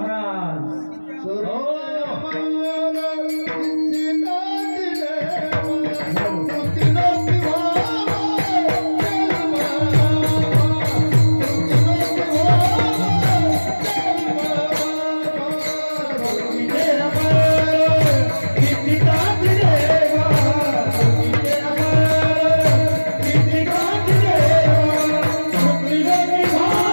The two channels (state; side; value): inverted; both; correlation -1.00